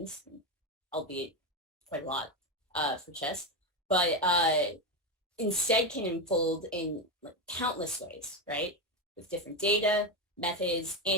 albeit quite a lot for chess, but instead can unfold in like, countless ways, right? With different data, methods,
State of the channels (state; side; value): normal; both; correlation 0.13